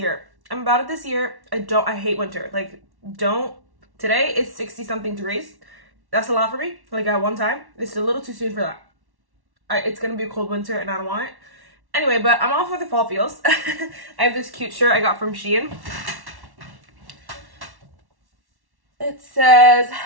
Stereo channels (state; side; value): late; left; 1.1 ms